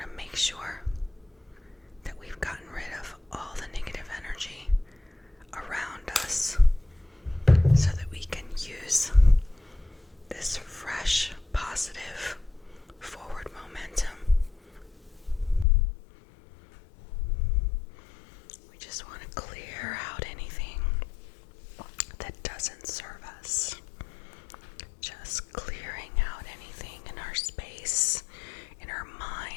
to make sure that we've gotten rid of all the negative energy around us so that we can use this fresh, positive, forward momentum. We just want to clear out anything that doesn't serve us. Just clearing out anything in our space, in our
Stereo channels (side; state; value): right; drops out; at 15.7 s